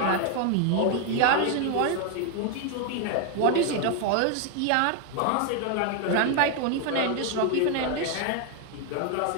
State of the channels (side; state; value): both; different; correlation 0.01